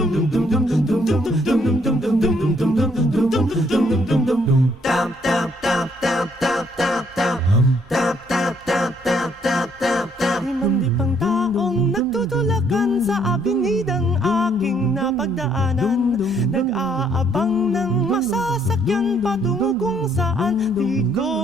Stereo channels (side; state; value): both; normal; correlation 0.68